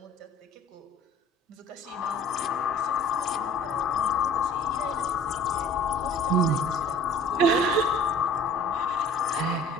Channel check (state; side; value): normal; both; correlation 0.49